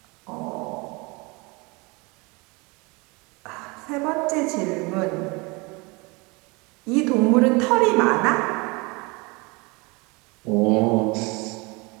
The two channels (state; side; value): quieter; left; 27.2 dB